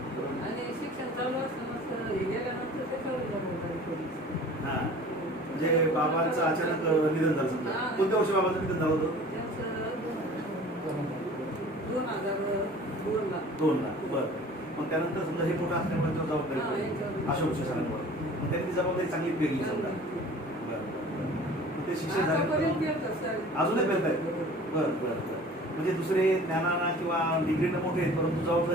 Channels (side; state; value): right; noise; rumble, 30 dB below the sound